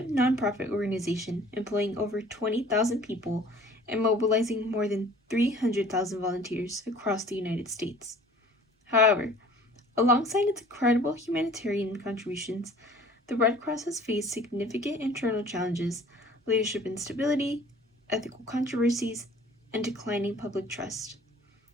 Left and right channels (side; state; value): both; normal; correlation 0.50